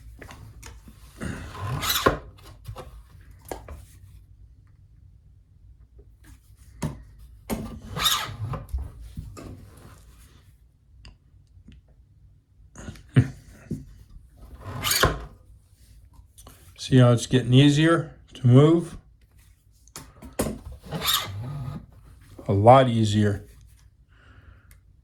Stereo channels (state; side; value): identical; both; correlation 1.00